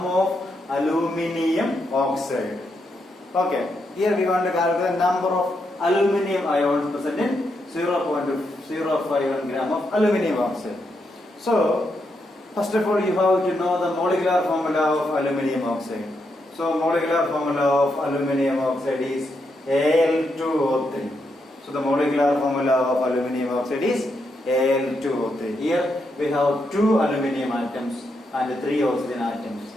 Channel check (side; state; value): both; normal; correlation 0.81